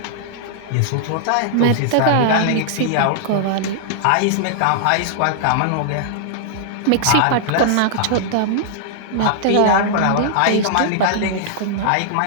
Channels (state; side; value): different; both; correlation -0.01